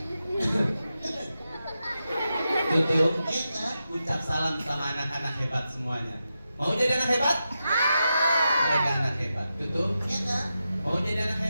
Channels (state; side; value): inverted; both; correlation -0.89